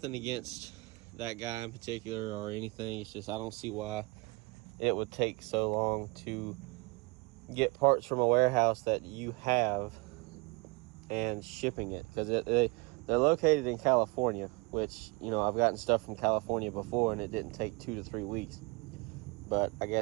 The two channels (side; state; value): left; quieter; 26.8 dB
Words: against that guy in particular or anything. It's just I don't see why it would take so long to get parts from a warehouse that you have and shipping it, because they're located in California, which, you know, I've gotten stuff from California before and it didn't take 2 to 3 weeks. But I